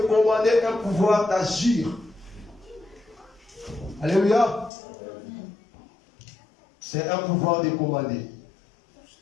commander, un pouvoir d'agir. Alléluia. C'est un pouvoir de commander.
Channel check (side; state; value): right; drops out; at 4.7 s